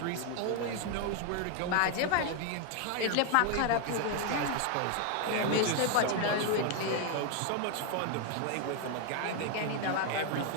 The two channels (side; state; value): both; different; correlation 0.01